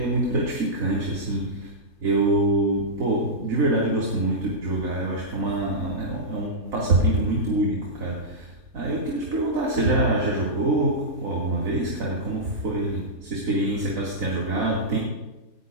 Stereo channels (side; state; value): left; late; 3.2 ms